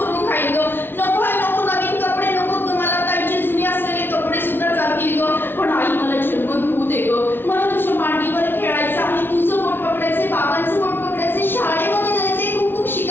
खाईल ग. नको आई नको, नवीन कपडे नको ग. मला ताईचे जुने असलेले कपडे सुद्धा चालतील ग. पण आई मला जन्म घेऊ दे ग. मला तुझ्या मांडीवर खेळायचं आणि तुझं बोट पकडायचे, बाबांचं बोट पकडायचे, शाळेमध्ये जायचे, खूप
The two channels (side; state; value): right; late; 0.10 ms